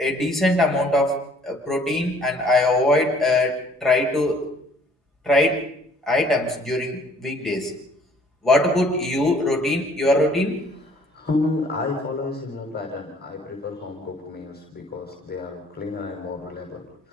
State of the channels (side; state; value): both; normal; correlation 0.58